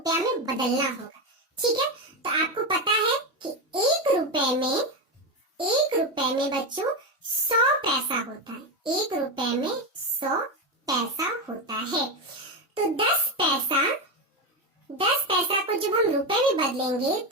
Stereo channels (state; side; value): normal; both; correlation 0.13